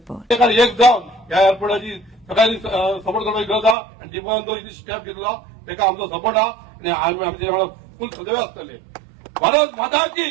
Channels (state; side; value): drops out; left; at 3.8 s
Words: एक जावन ह्या एअरपोर्टाची सगळ्यांनी सपोर्ट करपाची गरज आसा आनी डिपोन जो स्टेप घेतला ताका आमचो सपोर्ट आहा आनी आमी आमचे वांगडा फुल सदैव आसतले। भारत माता